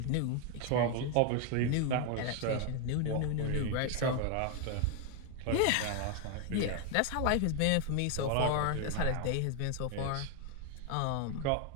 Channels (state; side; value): different; both; correlation 0.01